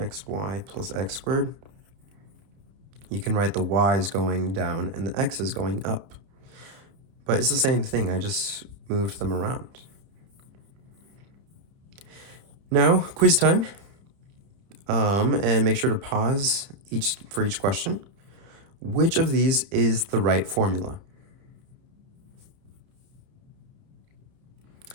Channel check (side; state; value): left; late; 30 ms